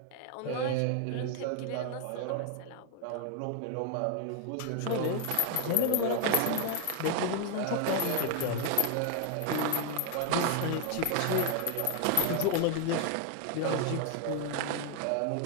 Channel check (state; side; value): different; both; correlation 0.01